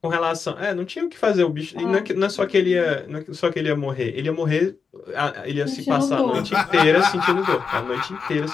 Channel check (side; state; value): right; quieter; 5.5 dB